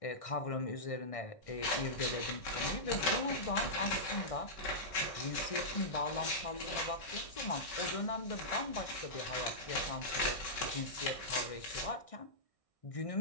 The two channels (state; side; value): late; right; 1.6 ms